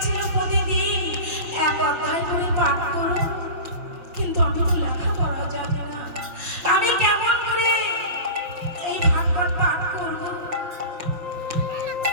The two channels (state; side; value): late; left; 6.0 ms